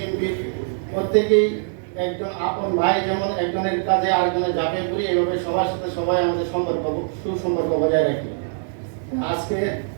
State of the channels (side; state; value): left; silent; 64 dB below the other